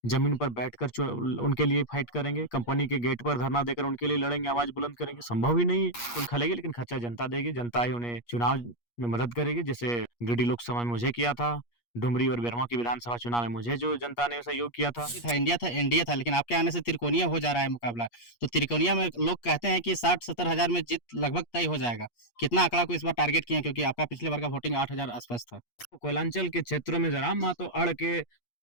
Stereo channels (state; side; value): late; right; 8.4 ms